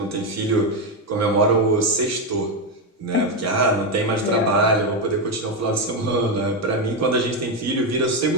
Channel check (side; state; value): both; normal; correlation 0.08